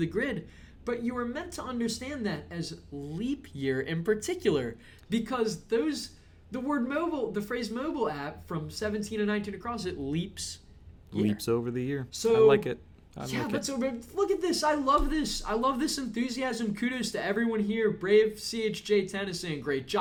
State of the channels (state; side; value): identical; both; correlation 1.00